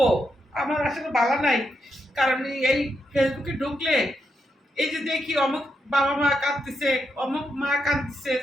আমার আসলে বলা নাই। কারণ এই ফেসবুকে ঢুকলে এই যে দেখি অমুক বাবা মা কাঁদতেছে, অমুক মা কাঁদতেছে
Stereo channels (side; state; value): both; normal; correlation 0.83